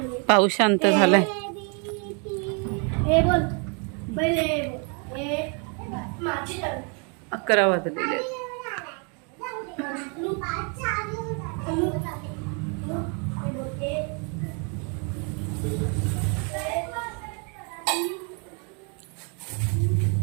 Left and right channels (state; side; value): quieter; left; 36.3 dB